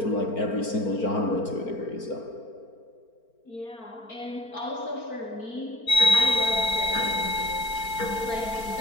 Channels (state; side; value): late; right; 4.4 ms